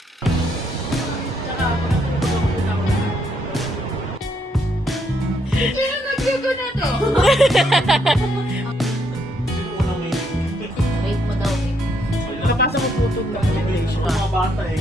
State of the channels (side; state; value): both; normal; correlation 0.73